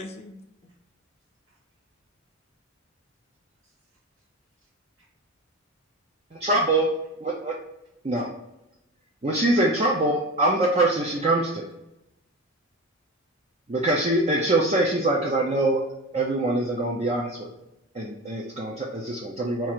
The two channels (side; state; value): both; normal; correlation 0.28